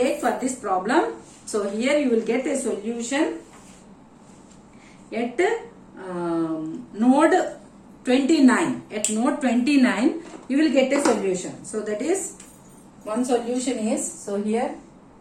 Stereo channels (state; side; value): identical; both; correlation 1.00